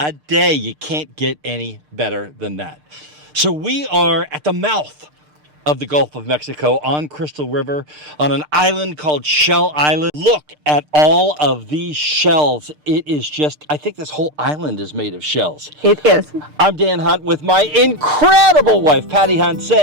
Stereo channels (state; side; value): late; left; 6.6 ms